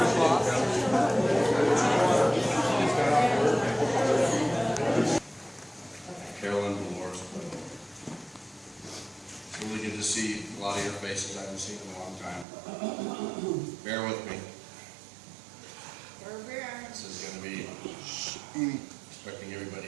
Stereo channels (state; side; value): drops out; left; at 12.5 s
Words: Carolyn and Dolores. It's really good to see a lot of your faces I haven't seen in a long time. Bear with me. This is going to be expecting everybody